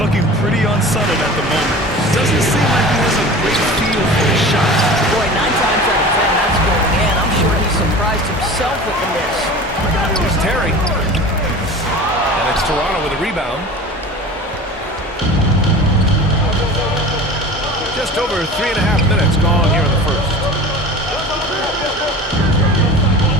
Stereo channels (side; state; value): both; normal; correlation 0.37